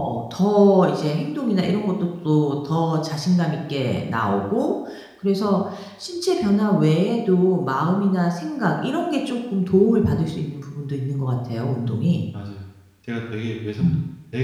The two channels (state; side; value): identical; both; correlation 1.00